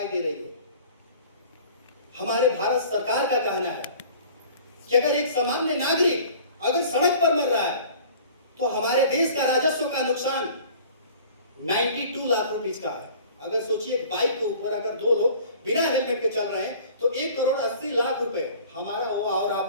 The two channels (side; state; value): both; inverted; correlation -0.47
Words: दे रही है। हमारे भारत सरकार का कहना है कि अगर एक सामान्य नागरिक अगर सड़क पर मर रहा है तो हमारे देश का राजस्व का नुकसान 92 लाख रुपए का है। अगर सोचिए, बाइक के ऊपर अगर 2 लोग बिना हेलमेट के चल रहे हैं तो 1 करोड़ 80 लाख रुपए हमारा हुआ और